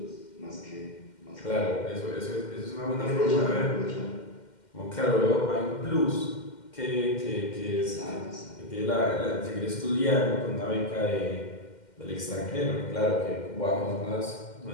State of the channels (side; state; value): right; late; 2.1 ms